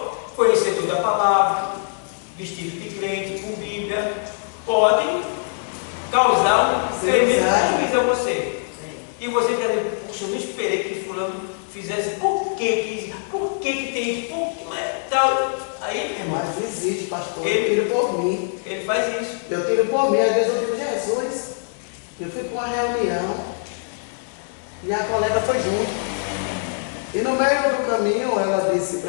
conhecedora da palavra, vestido de crente, com Bíblia, pode causar um tremendo prejuízo a você. E você está dizendo, puxa, eu não esperei que fulano fizesse, por que tem isso, por que não é tal? Aí, irmão, Mas existe, pastor, eu tiro por mim. Ele faz isso. Eu tiro por mim, às vezes eu digo, Jesus, eu fui para uma reunião e a colega foi junto. E no meio do caminho ela disse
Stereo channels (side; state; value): right; silent; digital silence